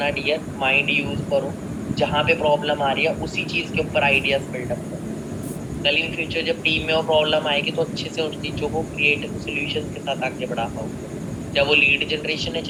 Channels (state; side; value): identical; both; correlation 1.00